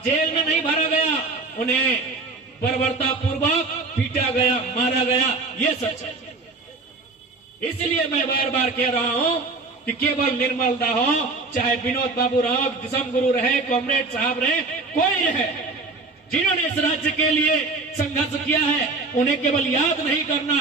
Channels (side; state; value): left; quieter; 3.7 dB